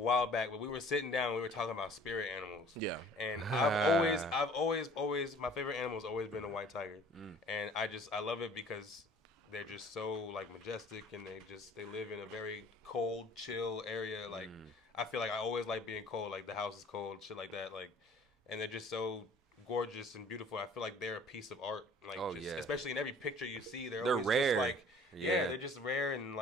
back. But we were sitting down, we were talking about spirit animals. Yeah. And I've always, my favorite animal has always been a white tiger, and I love it because they're just so like majestic, and they live in a very cold, chill area. Like I feel like I always like being cold. Like the house is cold, shit like that. Like, and they're just so gorgeous and beautiful. I feel like they're a piece of art. Like, especially in every picture you see, they're always rare. Just like, they're just rare, and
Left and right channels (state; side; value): normal; both; correlation 0.51